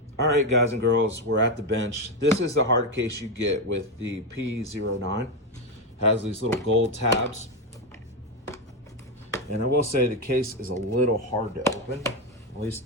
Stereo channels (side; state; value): both; normal; correlation 0.09